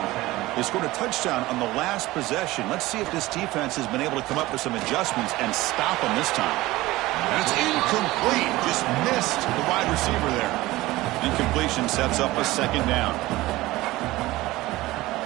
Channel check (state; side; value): quieter; left; 18.5 dB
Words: They scored a touchdown on the last possession. Let's see if this defense has been able to come up with some adjustments and stop them this time. And it's incomplete. Just missed the wide receiver there. Incompletion sets up a second down.